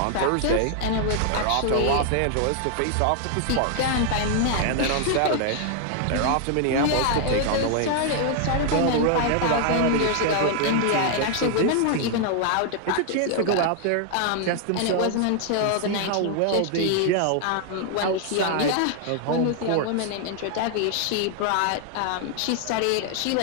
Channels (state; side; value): different; both; correlation 0.00